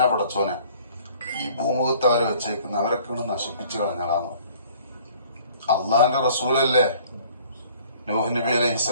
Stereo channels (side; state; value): both; inverted; correlation -0.54